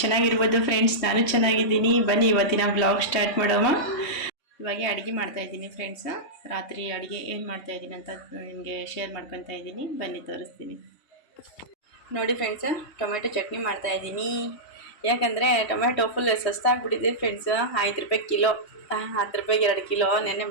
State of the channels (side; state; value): right; late; 3.2 ms